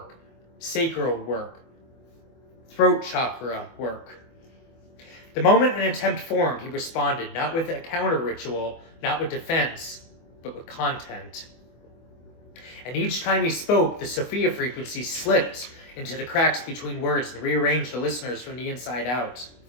sacral work, throat chakra work. The moment an attempt formed, he responded, not with a counter ritual, not with defense, but with content. And each time he spoke, the Sophia Frequency slipped into the cracks between words and rearranged the listeners from the inside out.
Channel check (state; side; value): late; right; 24 ms